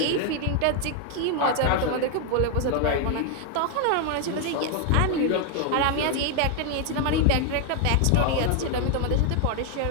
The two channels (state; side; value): different; both; correlation 0.00